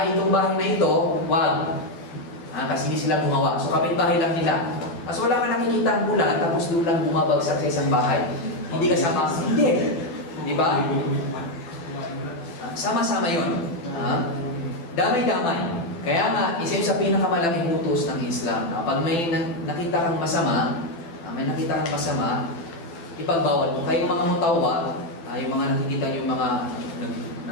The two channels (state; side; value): late; right; 12 ms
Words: itong bahay na ito, wag. Kasi hindi sila gumawa. So, kapitbahay lang nila. So, wala ka nakikita ang bulan, tapos doon lang bumabagsak sa isang bahay. Hindi kasama. Hindi. Diba? Sama-sama yun. Damay-damay. Kaya nga, isa yun sa pinakamalaking utos ng Islam. Pag may nakita kang masama, ipagbawal mo. Kaya yung mga mutawa, yung mga nakikita yung mga